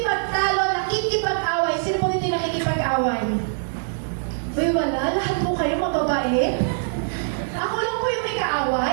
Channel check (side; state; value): left; silent; digital silence